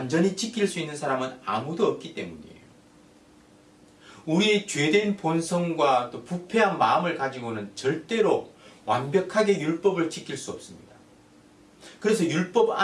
지킬 수 있는 사람은 아무도 없기 때문이에요. 우리의 죄된 본성과 또 부패한 마음을 가지고는 절대로 완벽하게 율법을 지킬 수 없습니다. 그래서 율법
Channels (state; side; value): identical; both; correlation 1.00